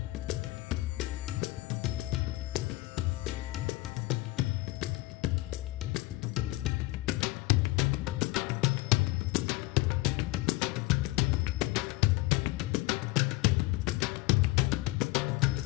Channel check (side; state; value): right; quieter; 19.7 dB